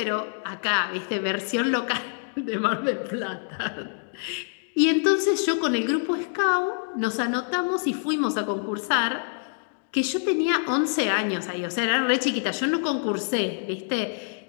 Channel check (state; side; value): silent; right; 61 dB below the other